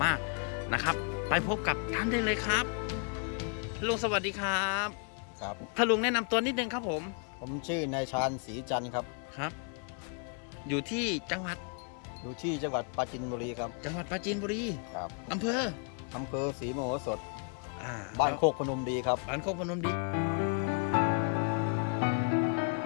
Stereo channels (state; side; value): quieter; right; 38.9 dB